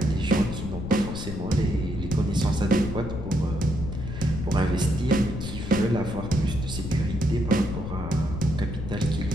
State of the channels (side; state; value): left; noise; rumble, 7 dB below the sound